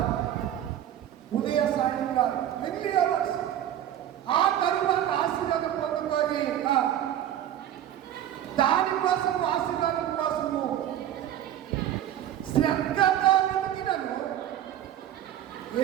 ఉదయ సాయం కాదు, ఎర్లీ అవర్స్. ఆ తరువాత ఆశీర్వాదం పొందుకొని దానికోసం, ఆశీర్వాదం కోసము శ్రద్ధగా వెతికినను ఏ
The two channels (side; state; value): left; quieter; 11.3 dB